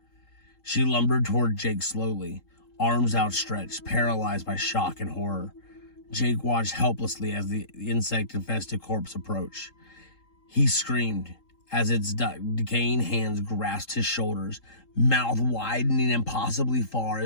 She lumbered toward Jake slowly, arms outstretched, paralyzed by shock and horror. Jake watched helplessly as the insect-infested corpse approached. He screamed as its decaying hands grasped his shoulders, mouth widening impossibly far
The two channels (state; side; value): late; right; 3.8 ms